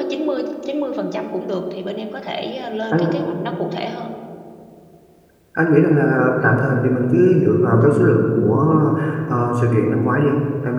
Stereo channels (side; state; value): both; identical; correlation 1.00